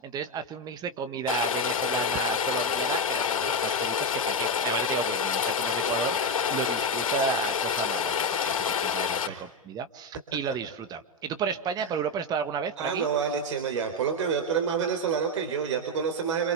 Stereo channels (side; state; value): both; normal; correlation 0.08